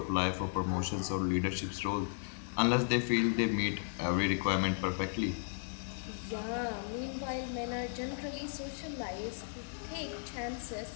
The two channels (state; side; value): silent; right; digital silence